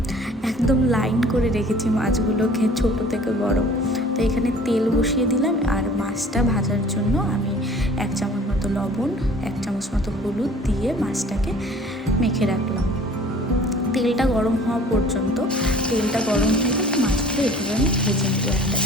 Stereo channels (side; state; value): both; normal; correlation 0.49